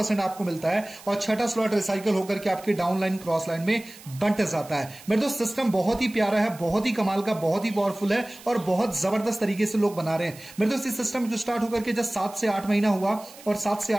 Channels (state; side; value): noise; right; hiss, 19 dB below the sound